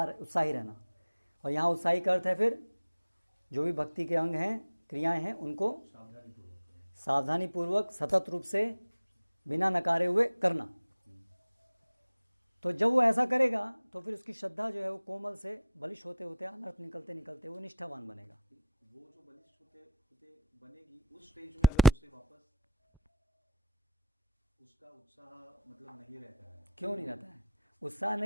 रहना, और यहाँ उत्साही का अर्थ है फिर जो भी भक्ति के अंग हैं, क्रियाएं हैं, उनको सावधानी पूर्वक सतत रूप से बिना नकारे हुए करना। तो जब वो ऐसा करेगा तो फिर उसकी श्रद्धा जो है वो कोमल से बलिष्ठ होते होते अनर्थ निकलते निकलते वो निष्ठावान बनेगा। वो जो बलिष्ठ होते होते बनेगी उस स्टेज में अगर उसे वापस उसका उत्साह मतलब नहीं रहता है। क्यों नहीं रहता है? उत्साह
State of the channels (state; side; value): inverted; both; correlation -0.62